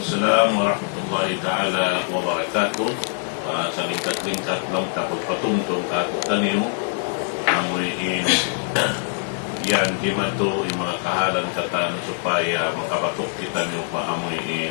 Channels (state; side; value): silent; right; 63 dB below the other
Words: warahmatullahi ta'ala wabarakatuh. Sa lingkat-lingkat lang kapagpatungtong kakutan niyo, amuin yan, di mato yung mga kahalan katano supaya makapatok kita niyo pa